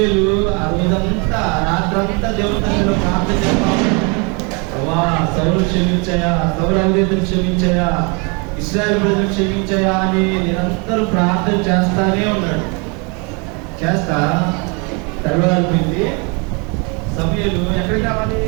ఆ రోజంతా రాత్రంతా దేవుని సన్నిధిలో ప్రార్థన చేస్తాము. సౌలు క్షమించాయా, సౌలు అవిధేయతను క్షమించాయా, ఇశ్రాయేలు ప్రజలు క్షమించాయా అని నిరంతరం ప్రార్థన చేస్తానే ఉన్నాడు. చేస్తా తెల్లవారిపోయింది. సమూయేలు ఎక్కడికి రావాలి?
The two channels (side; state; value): left; quieter; 32.3 dB